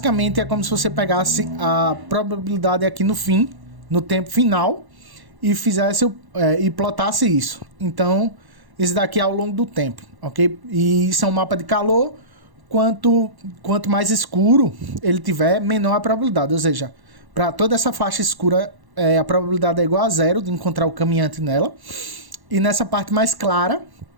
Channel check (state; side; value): late; left; 1.1 ms